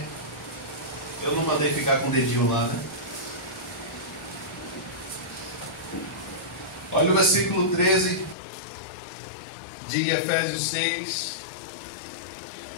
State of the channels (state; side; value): drops out; right; at 8.3 s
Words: Eu não mandei ficar com o dedinho lá, né? Olha o versículo 13 de Efésios 6.